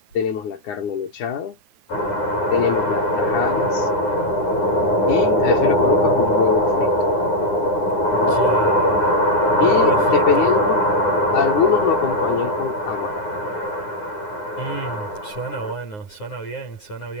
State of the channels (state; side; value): late; right; 9.6 ms